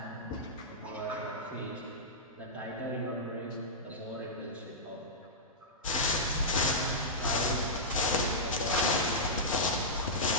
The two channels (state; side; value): normal; both; correlation -0.12